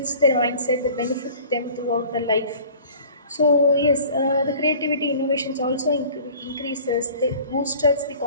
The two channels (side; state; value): both; inverted; correlation -0.47